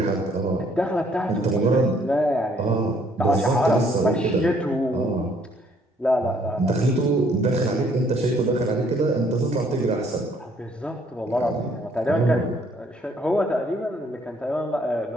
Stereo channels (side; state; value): both; normal; correlation 0.64